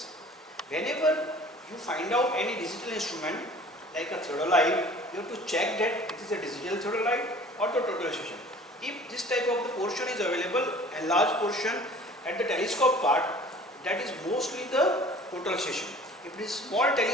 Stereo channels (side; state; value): both; normal; correlation 0.47